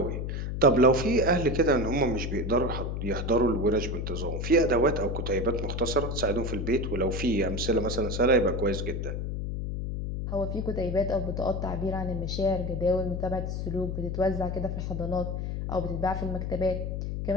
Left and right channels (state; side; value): noise; left; hum, 3 dB below the sound